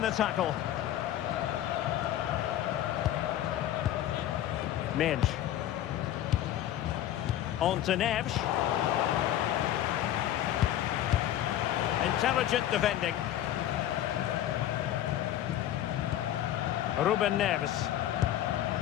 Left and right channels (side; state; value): right; quieter; 12.2 dB